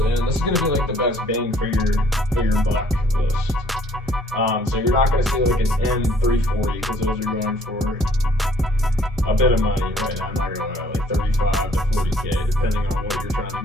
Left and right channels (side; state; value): both; normal; correlation 0.61